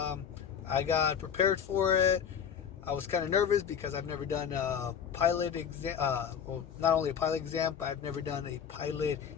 I got prepared for it. I was kind of nervous because I've never done a pilot exam. Not only a pilot exam, but I've never done a pilot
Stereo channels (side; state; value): right; quieter; 7.8 dB